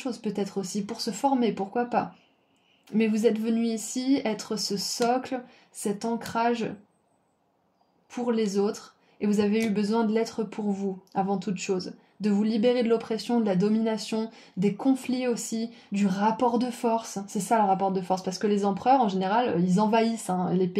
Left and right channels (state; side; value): identical; both; correlation 1.00